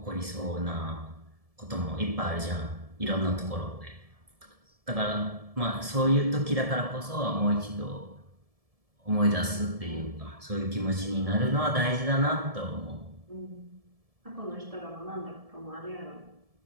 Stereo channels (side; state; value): left; late; 1.7 ms